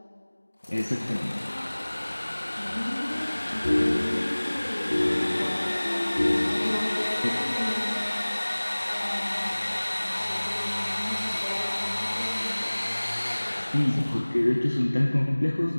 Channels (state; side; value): inverted; both; correlation -1.00